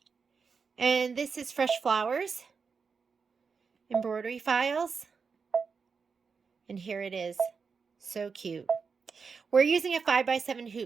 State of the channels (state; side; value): quieter; left; 5.4 dB